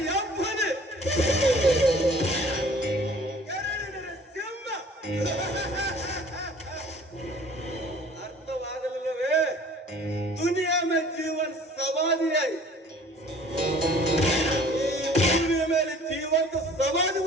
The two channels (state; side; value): normal; both; correlation 0.50